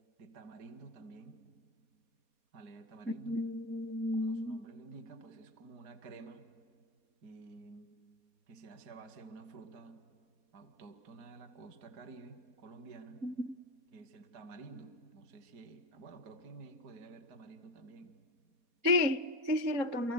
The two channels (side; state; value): left; late; 4.2 ms